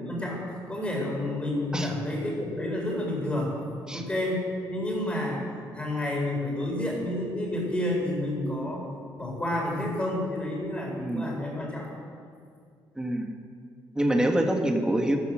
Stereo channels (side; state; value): both; normal; correlation 0.73